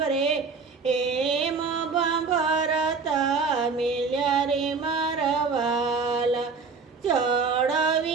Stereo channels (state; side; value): quieter; left; 4.8 dB